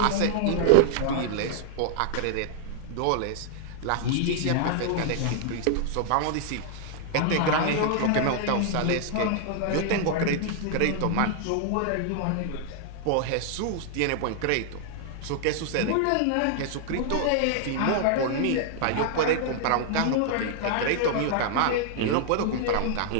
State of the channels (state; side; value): different; both; correlation 0.00